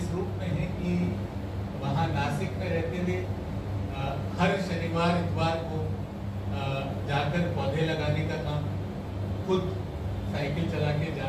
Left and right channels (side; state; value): both; identical; correlation 1.00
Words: रूप में है कि वहाँ नासिक में रहते हुए हर शनिवार इतवार को जाकर पौधे लगाने का काम, खुद साइकिल चला के